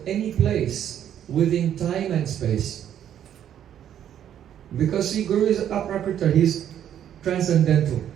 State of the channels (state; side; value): quieter; left; 10.1 dB